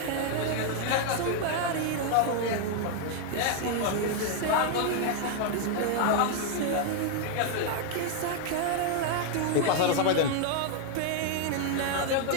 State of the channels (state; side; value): different; both; correlation 0.00